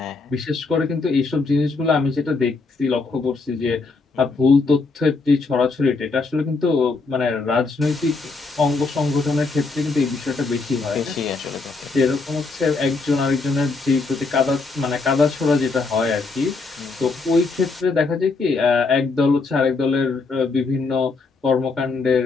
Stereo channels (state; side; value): quieter; right; 4.0 dB